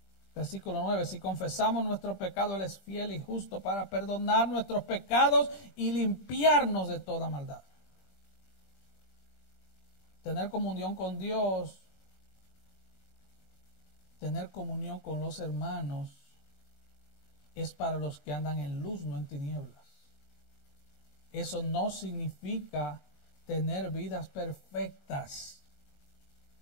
Versículo 9, si confesamos nuestro pecado, Él es fiel y justo para perdonar nuestros pecados y limpiarnos de toda maldad. Tener comunión con Dios, tener comunión con los hermanos, es para los que andan en luz, no en tinieblas. Eso no significa tener vidas perfectas.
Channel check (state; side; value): late; right; 22 ms